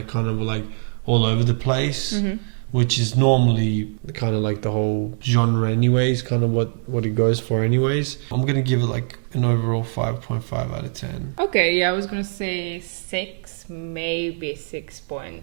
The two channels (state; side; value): silent; left; digital silence